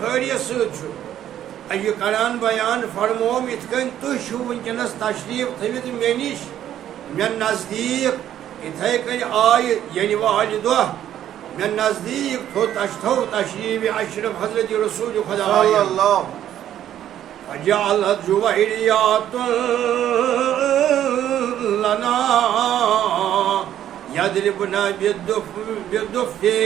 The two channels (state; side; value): quieter; left; 11.2 dB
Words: ست یہ کران بیان فرموم ات کن تھی ونکس تشریف تھوت مے نش مے نزدیک اتھے کن آئی یعنی والہ دہ مے نزدیک تھو تشریف اشرف حضرت رسول خدا فجعلت جويريات لنا يضربنا بالدف